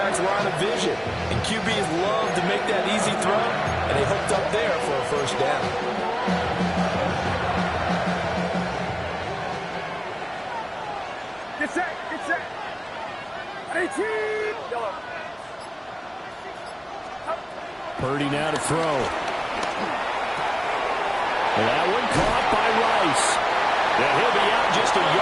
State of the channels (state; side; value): identical; both; correlation 1.00